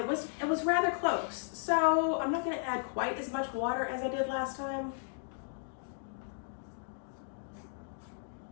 was rather close. So I'm not going to add quite as much water as I did last time.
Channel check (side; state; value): right; silent; digital silence